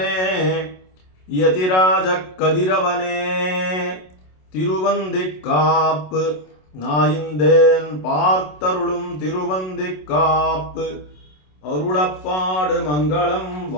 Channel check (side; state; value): right; late; 27 ms